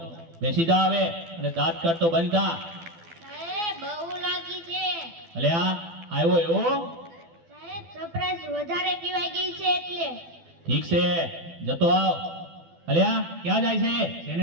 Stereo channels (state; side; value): late; left; 12 ms